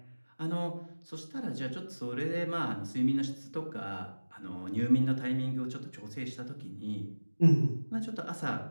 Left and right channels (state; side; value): inverted; both; correlation -1.00